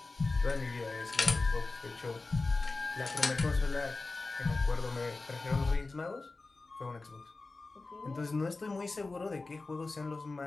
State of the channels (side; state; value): right; quieter; 3.5 dB